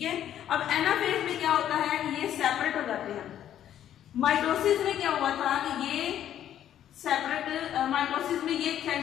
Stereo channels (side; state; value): right; quieter; 10.8 dB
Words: है। अब एनाफेज में क्या होता है कि ये सेपरेट हो जाते हैं। माइटोसिस में क्या हुआ था कि ये सेपरेट, माइटोसिस में ये